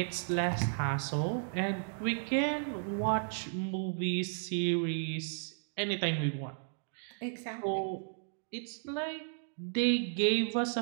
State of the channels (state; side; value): silent; left; digital silence